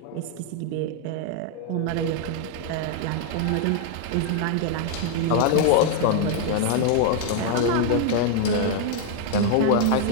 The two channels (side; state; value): both; different; correlation 0.00